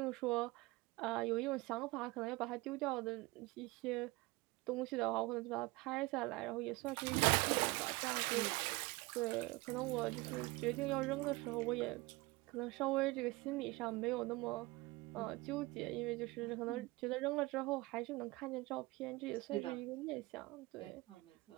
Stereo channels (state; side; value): quieter; left; 22.4 dB